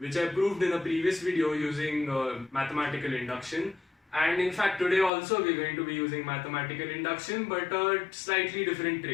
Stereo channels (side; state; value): right; drops out; at 5.1 s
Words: I proved in a previous video using mathematical induction. And in fact today also we are going to be using mathematical induction, but a slightly different